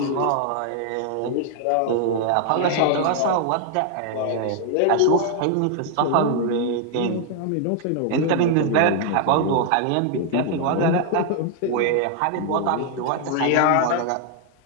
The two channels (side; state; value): both; different; correlation 0.00